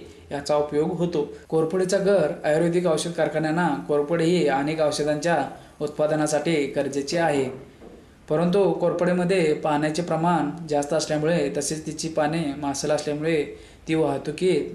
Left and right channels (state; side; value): identical; both; correlation 1.00